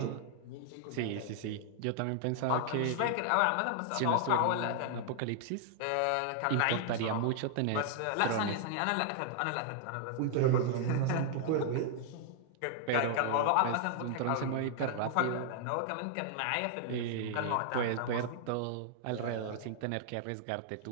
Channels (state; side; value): different; both; correlation -0.01